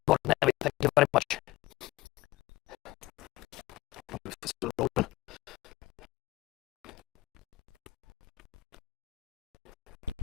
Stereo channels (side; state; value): right; quieter; 17.8 dB